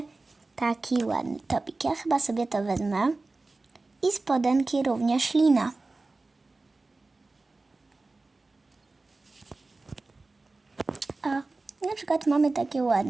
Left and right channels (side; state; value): left; quieter; 3.4 dB